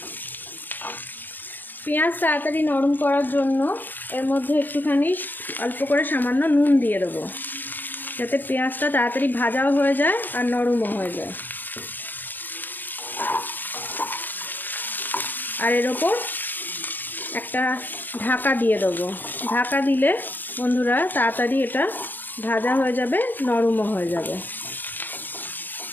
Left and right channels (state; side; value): late; right; 0.089 ms